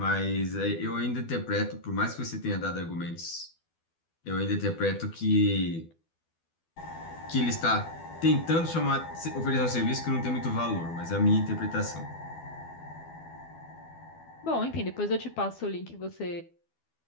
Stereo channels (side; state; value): right; late; 12 ms